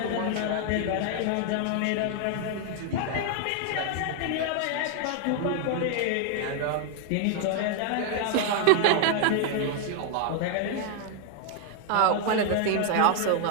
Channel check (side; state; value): both; different; correlation 0.00